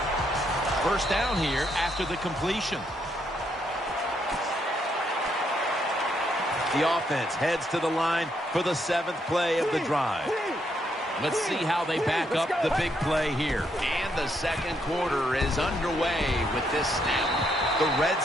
1st down here after the completion. The offense heads to the line for the 7th play of the drive. Let's see how they back up the big play here. And the second quarter is underway with this snap. The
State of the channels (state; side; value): normal; both; correlation 0.75